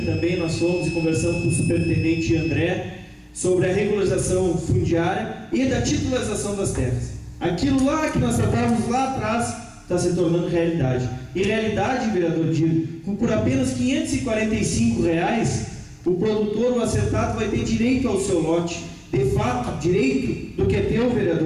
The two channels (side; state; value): both; identical; correlation 1.00